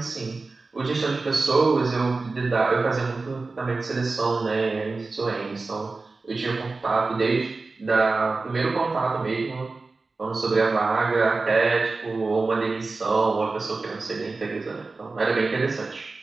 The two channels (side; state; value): left; quieter; 3.8 dB